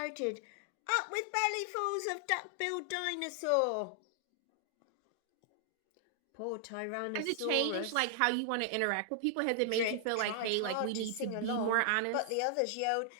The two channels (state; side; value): different; both; correlation 0.00